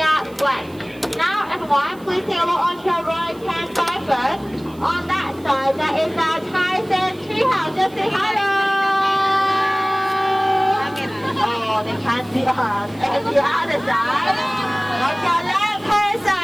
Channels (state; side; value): noise; right; hiss, 26 dB below the sound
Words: wet. Now everyone, please take a look on your right hand side first. On that side, that is our Tyson treehouse. Just say hello. Oh, they can't see us. And the other side, on your left hand